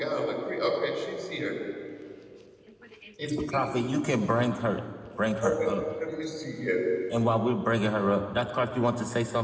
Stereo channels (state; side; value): identical; both; correlation 1.00